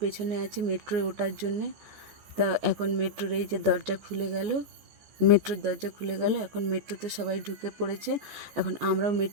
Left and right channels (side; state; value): left; late; 14 ms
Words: পেছনে আছি মেট্রোয় ওঠার জন্যে। তা এখন মেট্রোর এই যে দরজা খুলে গেল, মেট্রোর দরজা খুলে গেল, এখন মেট্রোতে সবাই ঢুকে পড়েছে। এখন আমরাও